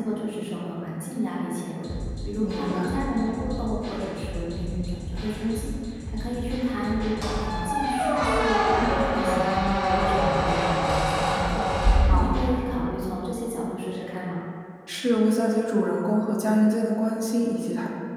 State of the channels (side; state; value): both; identical; correlation 1.00